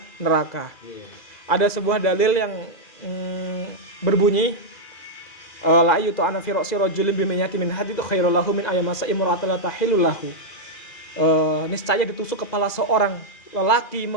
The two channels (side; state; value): right; late; 2.4 ms